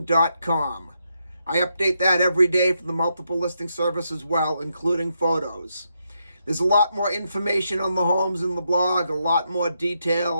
I update that every day for the multiple listing service as well, including photos. There's a lot more information on the homes in the blog, a lot more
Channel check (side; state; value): both; inverted; correlation -0.81